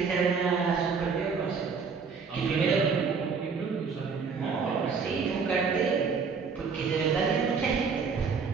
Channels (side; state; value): left; quieter; 5.4 dB